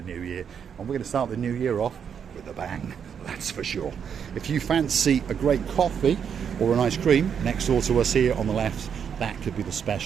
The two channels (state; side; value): quieter; left; 7.6 dB